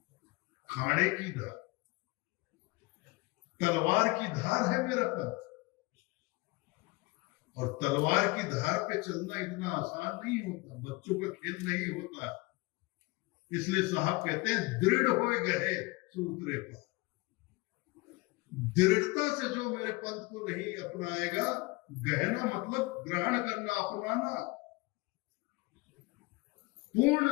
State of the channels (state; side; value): quieter; right; 24.0 dB